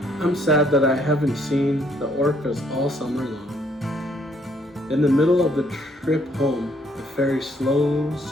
I'm sad that I haven't seen the orcas all summer long. In the middle of the trip home, the ferry slows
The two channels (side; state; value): both; normal; correlation 0.67